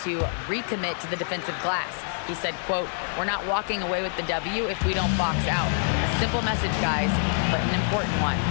to recommit to the defensive glass. He said, quote, "We're not walking away with the W if we don't box out." A simple message, guys, but an important one.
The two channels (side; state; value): right; silent; digital silence